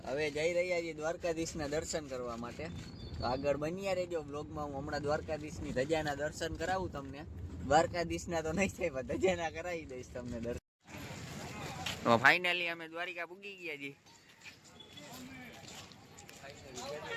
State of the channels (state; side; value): identical; both; correlation 1.00